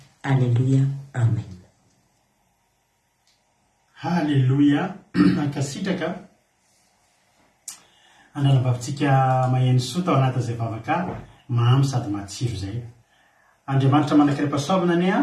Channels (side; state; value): both; identical; correlation 1.00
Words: Alleluia. Amen. Halleluia. Ankasitraka analam-bavitsika maheno soa tao anatin'izay vavaka mamy sady matsiro izay. Andriamanitra manankiram-pahasoavana ane